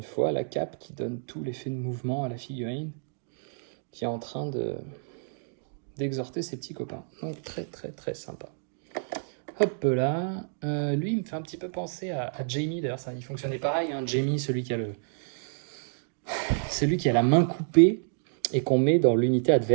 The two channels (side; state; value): left; silent; digital silence